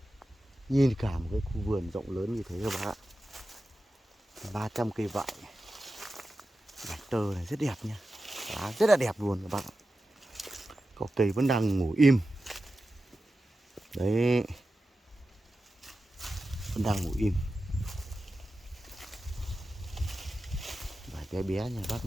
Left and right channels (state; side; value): normal; both; correlation 0.93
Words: Nhìn cả một cái khu vườn rộng lớn như thế các bác ạ, 300 cây vải, vải tơ này rất đẹp nha, lá rất là đẹp luôn các bác ạ. Có cây vẫn đang ngủ im đấy, vẫn đang ngủ im. Vải bé bé nhà bác